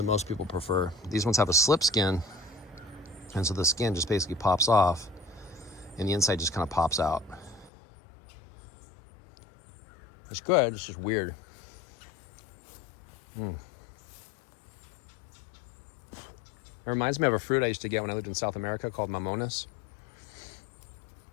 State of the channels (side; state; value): right; drops out; at 7.7 s